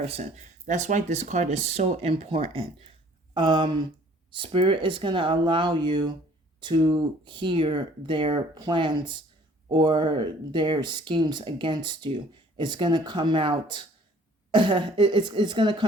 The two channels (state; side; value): normal; both; correlation 0.55